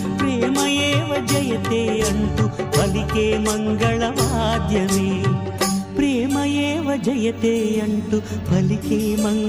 ప్రేమయేవ జయతే అంటూ పలికే మంగళవాద్యమే ప్రేమయేవ జయతే అంటూ పలికే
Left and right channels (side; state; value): both; identical; correlation 1.00